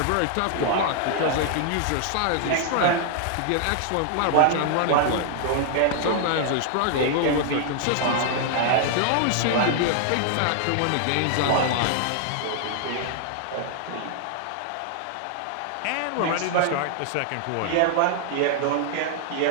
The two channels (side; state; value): both; different; correlation 0.00